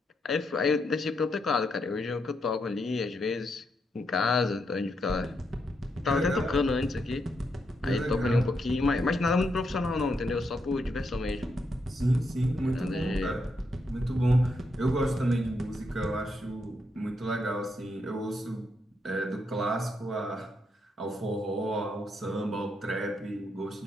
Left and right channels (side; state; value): both; normal; correlation 0.80